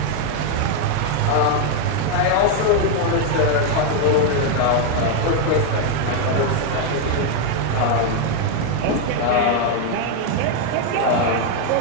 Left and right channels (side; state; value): both; different; correlation 0.01